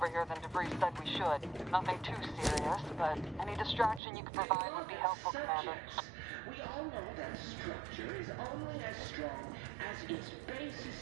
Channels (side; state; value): left; drops out; at 4.0 s